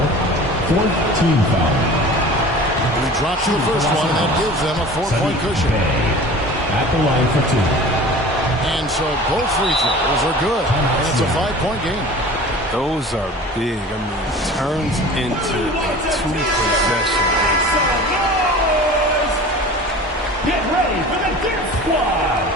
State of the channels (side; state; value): both; normal; correlation 0.40